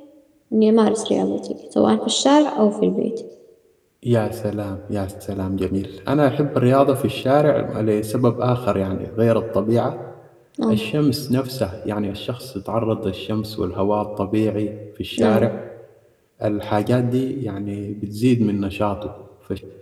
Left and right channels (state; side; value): identical; both; correlation 1.00